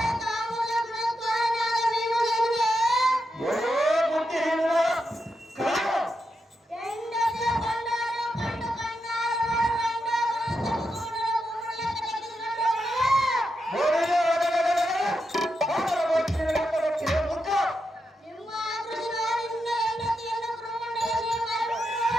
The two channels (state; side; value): normal; both; correlation 0.85